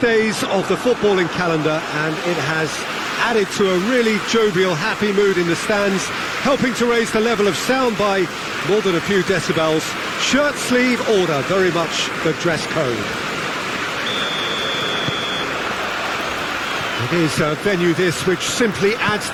of the footballing calendar, and it has added to a really jovial, happy mood in the stands, helping to raise the level of sound by more than a few decibels. Shirt sleeve order, very much the dress code. It is a venue this which simply adds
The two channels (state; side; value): identical; both; correlation 1.00